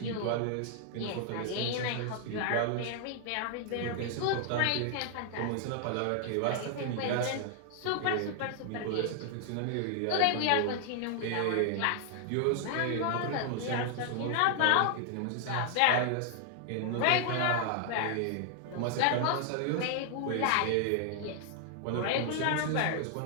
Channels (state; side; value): different; both; correlation 0.00